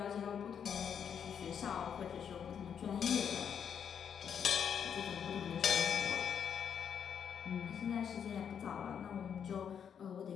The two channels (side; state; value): right; quieter; 7.8 dB